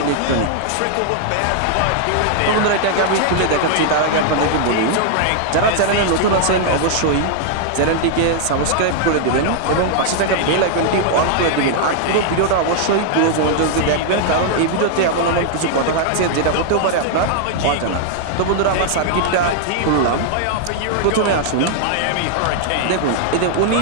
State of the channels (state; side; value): different; both; correlation 0.00